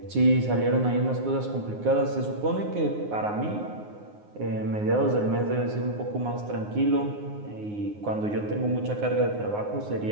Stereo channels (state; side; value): late; left; 9.6 ms